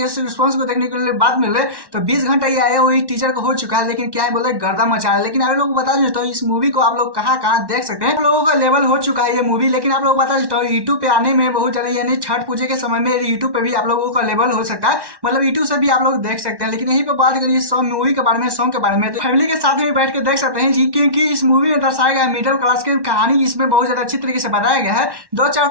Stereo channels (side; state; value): left; late; 1.1 ms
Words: इस रिस्पॉन्स को देखने के लिए बात मिल रही है, तो 20 घंटा ये आया हुई टीचर को हो चुका है, लेकिन क्या है बोले गर्दा मचा रहा है। लेकिन आप लोग बता देता हूँ इस मूवी को आप लोग कहाँ देख सकते हैं। आप लोगों का लेवल हो चुका है ये मूवी, लेकिन आप लोग बता देता हूँ यूट्यूब पे आने में बहुत ज्यादा, यानी छठ पूजे के समय में यूट्यूब पे भी आप लोगों का लेवल हो सकता है, मतलब यूट्यूब से भी आप लोग देख सकते हैं। लेकिन यहीं पे बात करिए मूवी के बारे में, सॉन्ग के बारे में, तो फैमिली के साथ में बैठ के देख सकते हैं जी, क्योंकि इस मूवी में दर्शाया गया मिडिल क्लास की कहानी इसमें बहुत ज्यादा अच्छी तरीके से बताया गया है।